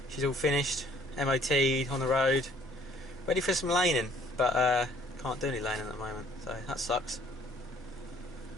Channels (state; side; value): normal; both; correlation 0.59